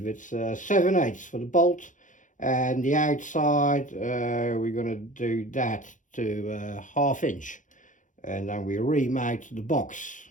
It's 7/8 for the bolt, and the outside we're going to do that to 1/2 inch, and then we remount the box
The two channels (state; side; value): late; right; 0.37 ms